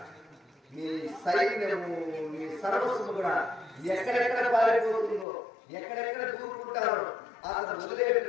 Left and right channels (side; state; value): right; drops out; at 5.2 s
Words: మీ సైన్యము మీ సర్వస్వము కూడా ఎక్కడెక్కడ పారిపోతుందో ఎక్కడెక్కడ దూరుకుంటారో అతను